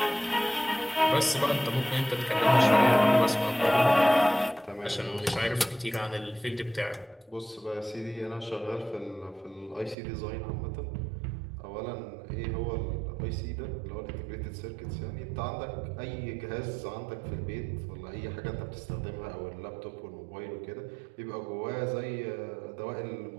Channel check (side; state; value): left; drops out; at 10.0 s